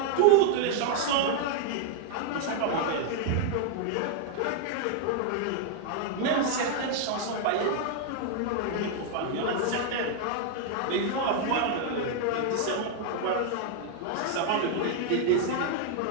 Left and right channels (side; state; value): both; different; correlation 0.00